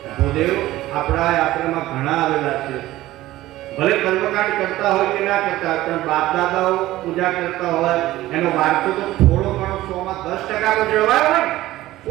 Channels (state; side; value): quieter; left; 16.1 dB